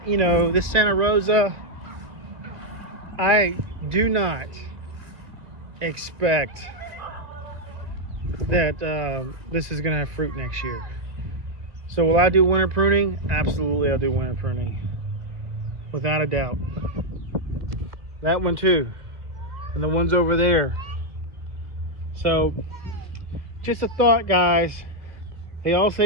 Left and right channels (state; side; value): late; left; 2.2 ms